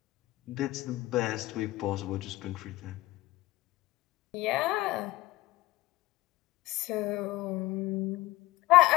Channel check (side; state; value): right; quieter; 18.0 dB